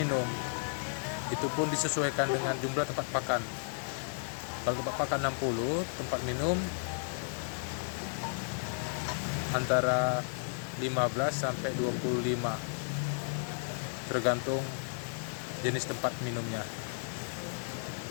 itu pun disesuaikan dengan jumlah tempat pakan. Kalau tempat pakan 60, tempat minum antara 15 sampai 25, tergantung jenis tempat minumnya.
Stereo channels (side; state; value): right; silent; digital silence